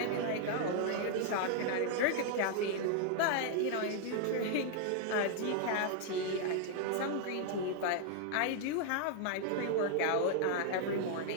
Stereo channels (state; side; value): different; both; correlation 0.00